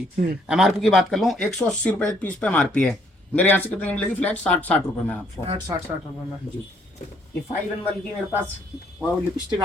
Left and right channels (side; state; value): both; normal; correlation 0.67